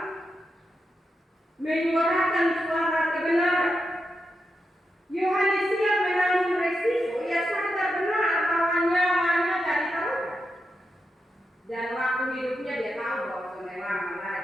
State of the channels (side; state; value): both; normal; correlation 0.87